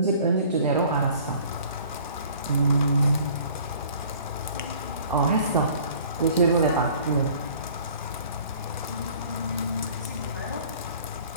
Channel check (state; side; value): inverted; both; correlation -0.51